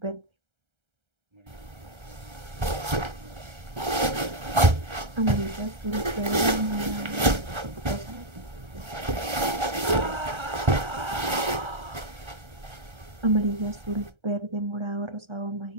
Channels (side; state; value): left; late; 1.3 ms